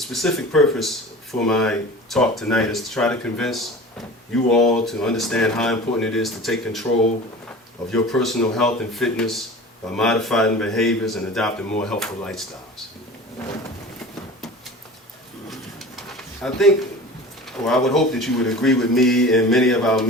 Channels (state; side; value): normal; both; correlation 0.37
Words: purpose for my talk tonight is to try to convince you all to understand how important it is to take control of your personal health and fitness by modifying behaviors and adopting more healthful lifestyles. I think, or I would hope that you would agree with me. In many of our